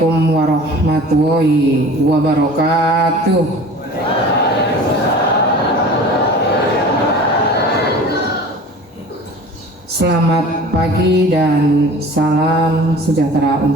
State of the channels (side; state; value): both; normal; correlation 0.41